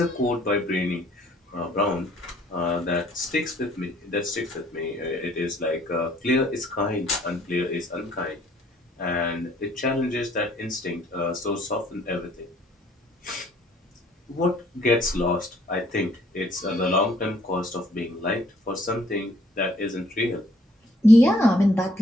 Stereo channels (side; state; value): both; normal; correlation 0.62